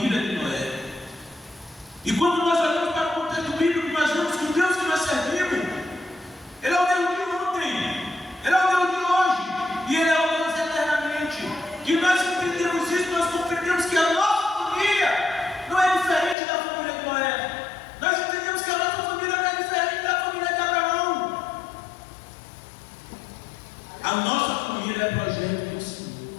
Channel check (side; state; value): right; drops out; at 16.4 s